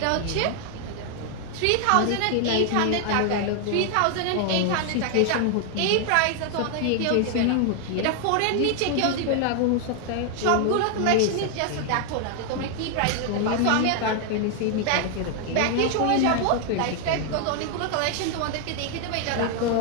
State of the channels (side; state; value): both; different; correlation 0.00